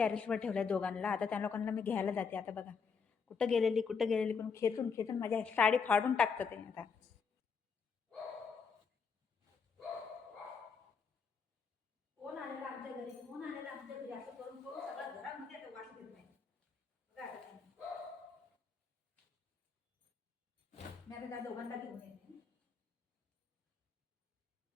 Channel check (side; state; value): right; quieter; 5.7 dB